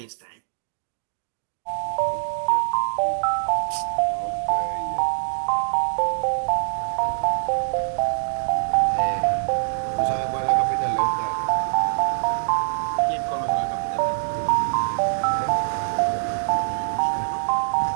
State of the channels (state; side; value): silent; left; digital silence